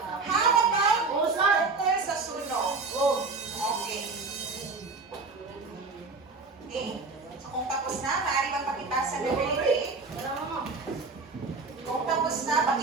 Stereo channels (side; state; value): left; quieter; 4.0 dB